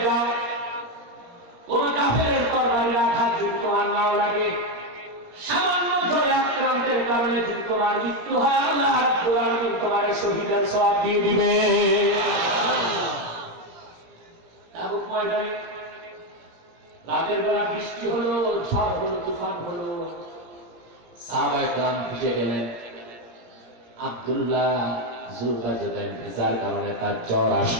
যাও, কোন কাফেরের তরবারির আঘাত যদি তোমার নাও লাগে, সামান্য জ্বরে আক্রান্তের কারণে যদি তোমার মৃত্যু হয়, আল্লাহ রাব্বুল আলামিন তোমার শহীদের সওয়াব দিয়ে দিবে। তাবুক ময়দানে রাতের বেলা বৃষ্টি হলো, ঝড় হলো, তুফান হলো, সাহাবায়ে কেরাম ভিজে গেলেন। আব্দুল্লাহ যুলকারনাইন ভিজার কারণে তার জ্বর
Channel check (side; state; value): left; late; 17 ms